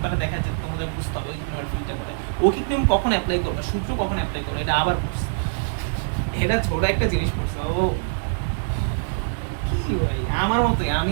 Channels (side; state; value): left; silent; digital silence